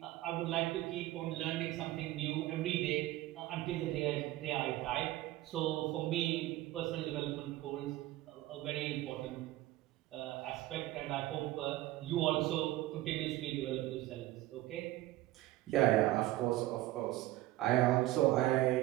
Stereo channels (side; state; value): left; quieter; 16.4 dB